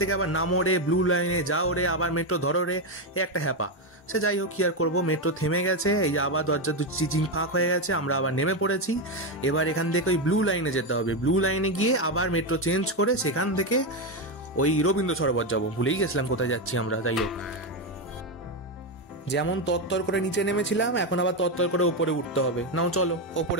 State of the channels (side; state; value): both; normal; correlation 0.09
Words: আবার নামো রে, ব্লু লাইনে যাও রে, আবার মেট্রো ধরো রে, এই একটা হ্যাপা। সে যাই হোক, কি আর করবো, মেট্রো থেমে গেছে। এই যে আবার দরজা চিচিং ফাঁক হয়ে গেছে, আমরা আবার নেমে পড়েছি। এবার এখান থেকে ওই ব্লু লাইনে যেতে হবে, ব্লু লাইনে গিয়ে আবার মেট্রো চেঞ্জ করে সেখান থেকে ওই রবীন্দ্র সরোবর যাবো। ভুলেই গেছিলাম কোথায় যাচ্ছি আমরা। যাই হোক, যেমন তত্তর করে নিচে নেমেছিলাম, এখন আবার তত্তর করে ওপরে উঠতে হবে। নাও চলো,